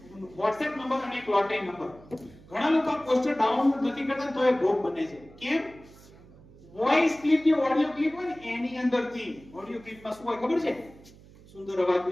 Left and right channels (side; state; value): right; noise; hum, 22 dB below the sound